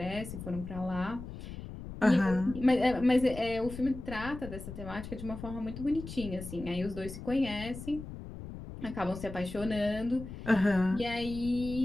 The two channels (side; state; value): left; noise; rumble, 11 dB below the sound